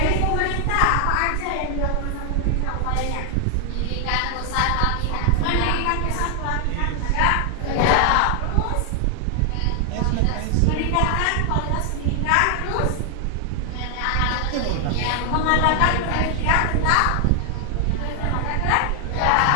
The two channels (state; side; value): different; both; correlation 0.00